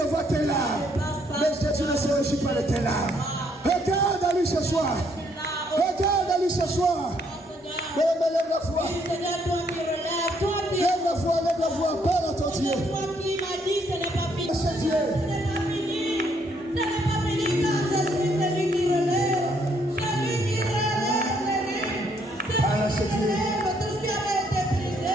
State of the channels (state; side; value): normal; both; correlation 0.70